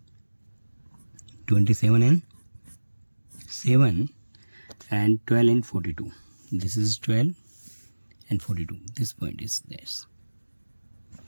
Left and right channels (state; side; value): inverted; both; correlation -1.00